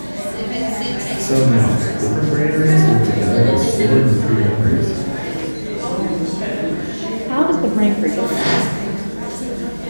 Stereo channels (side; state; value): both; inverted; correlation -1.00